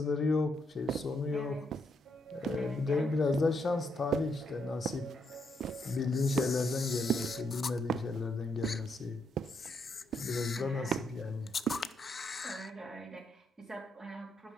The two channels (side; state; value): both; normal; correlation 0.76